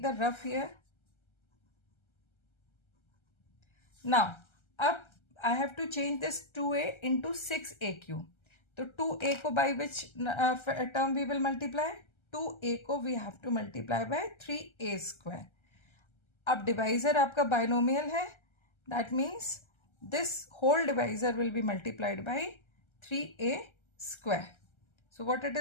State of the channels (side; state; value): right; late; 1.3 ms